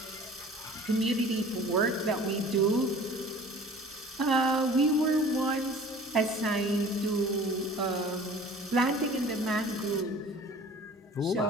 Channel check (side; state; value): both; normal; correlation 0.46